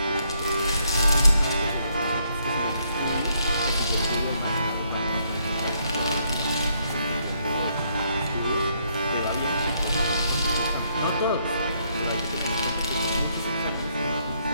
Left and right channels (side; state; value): both; inverted; correlation -0.73